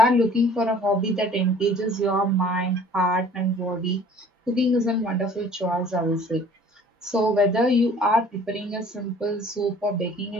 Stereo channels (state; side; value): normal; both; correlation 0.51